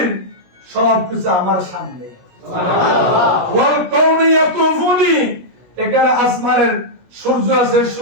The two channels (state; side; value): late; left; 17 ms